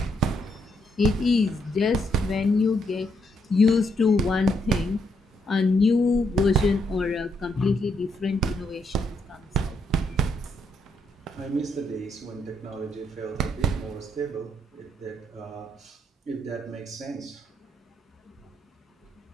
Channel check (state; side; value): normal; both; correlation 0.76